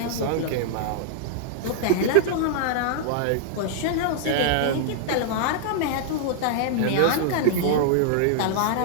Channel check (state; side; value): different; both; correlation -0.01